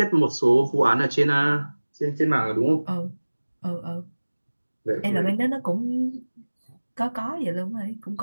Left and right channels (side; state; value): both; inverted; correlation -1.00